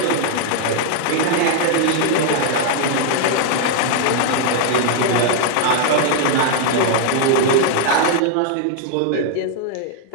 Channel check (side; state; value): both; different; correlation 0.00